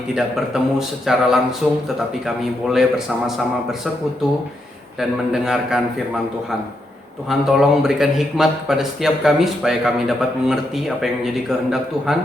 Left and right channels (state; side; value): normal; both; correlation 0.81